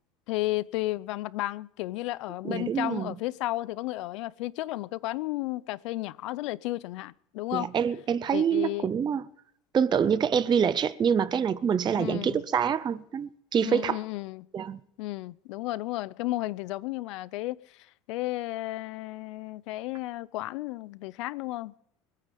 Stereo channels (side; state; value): both; normal; correlation 0.46